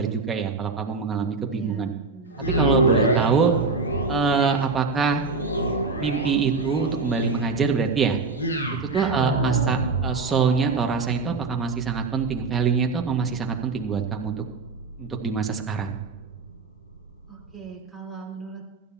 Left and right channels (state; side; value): quieter; left; 4.3 dB